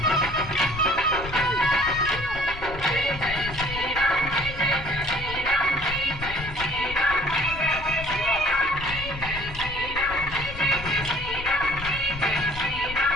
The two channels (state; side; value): noise; left; rumble, 11 dB below the sound